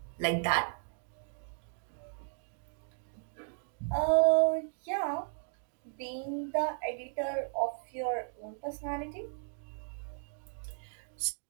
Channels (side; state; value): left; silent; digital silence